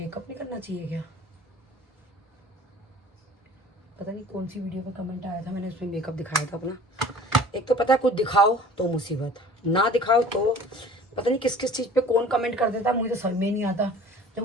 नहीं करना चाहिए क्या? पता नहीं कौन सी वीडियो पे कमेंट आया था, मैंने उसमें मेकअप दिखाया था अपना। एक तो पता है कुछ दिखाओ तो मुसीबत, ना दिखाओ तो पता नहीं किस किस चीज़ पे कौन कमेंट कर देता, मुझे तो समझ में नहीं आता। जब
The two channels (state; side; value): normal; both; correlation 0.47